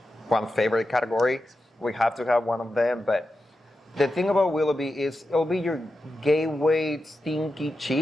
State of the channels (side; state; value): both; normal; correlation 0.90